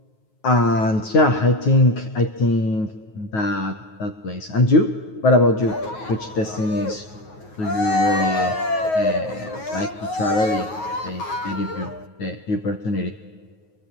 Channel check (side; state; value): right; late; 9.4 ms